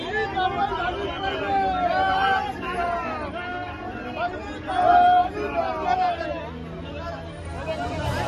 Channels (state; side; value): identical; both; correlation 1.00